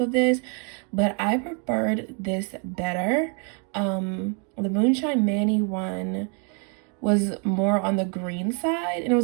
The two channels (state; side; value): quieter; left; 38.1 dB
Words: this, but I preferred this better. The Moonshine Manny one was more on the green side, and it